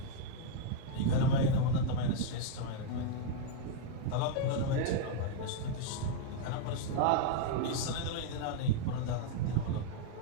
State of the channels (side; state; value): both; different; correlation -0.01